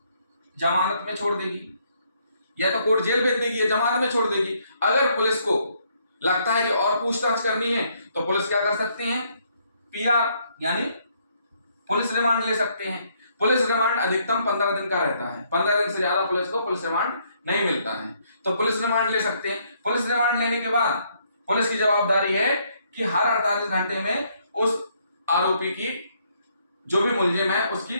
जमानत में छोड़ देगी, या तो कोर्ट जेल भेज देगी या जमानत में छोड़ देगी। अगर पुलिस को लगता है कि और पूछताछ करनी है तो पुलिस क्या कर सकते हैं? पीआर यानी पुलिस रिमांड ले सकते हैं। पुलिस रिमांड अधिकतम 15 दिन का रहता है, 15 दिन से ज्यादा पुलिस को पुलिस रिमांड नहीं मिलता है, तो पुलिस रिमांड ले सकते हैं। पुलिस रिमांड लेने के बाद पुलिस की जवाबदारी है कि हर 48 घंटे में उस आरोपी की, जो भी मुलजिम है, उसकी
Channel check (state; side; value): inverted; both; correlation -0.70